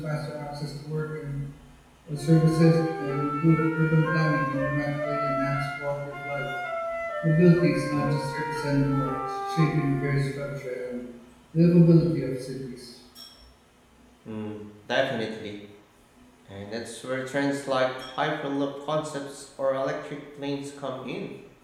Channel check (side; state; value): both; identical; correlation 1.00